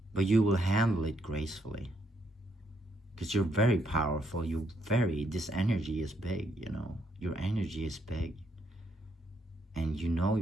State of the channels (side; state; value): both; normal; correlation 0.74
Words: But you will handle it gracefully. Because you're very powerful. This energy is big, you know. Your energy is big. And you know